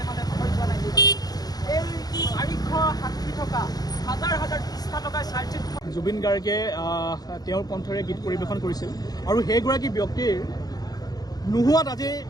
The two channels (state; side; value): late; right; 0.19 ms